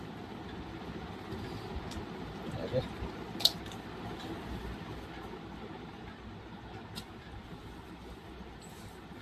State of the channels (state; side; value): identical; both; correlation 1.00